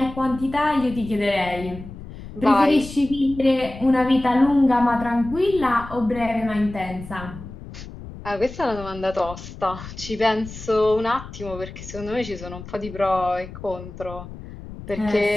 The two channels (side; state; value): left; noise; rumble, 13 dB below the sound